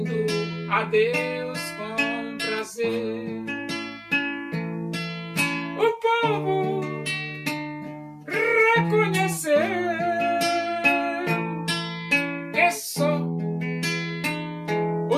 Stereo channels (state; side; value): identical; both; correlation 1.00